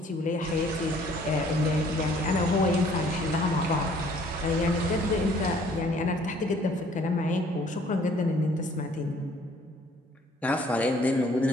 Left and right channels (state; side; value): normal; both; correlation 0.58